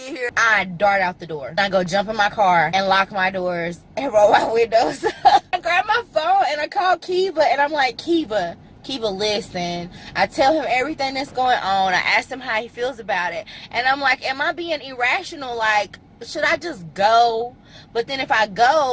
here. I dart out the door. I go jump in my car and lock my doors and roll my windows. I grab my phone and I call Kiva and I'm like, Kiva, listen. I tell him everything that's going on. I ask him how he feels about it. And I'm like, am I being irrational? Like, should I just go? But then if I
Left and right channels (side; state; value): both; identical; correlation 1.00